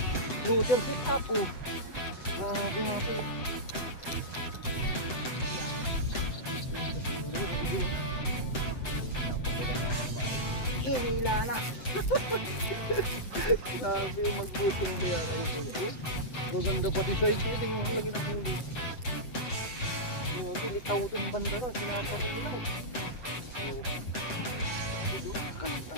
Luther sit up oh. Grabe mga to. Hila na. Grabe magbutong na yan. Oh, maganda pati siya ito. Tingnan mo lagi ng huli. Litaw itong banda na. Sinapagin nila. Oh,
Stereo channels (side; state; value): right; late; 7.8 ms